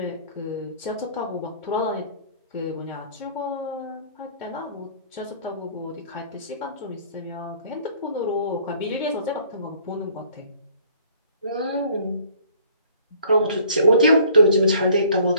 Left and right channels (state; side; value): inverted; both; correlation -0.55